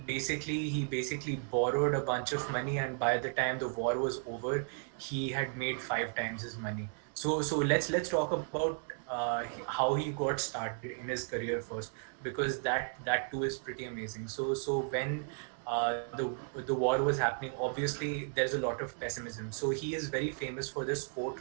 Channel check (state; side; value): silent; left; 55 dB below the other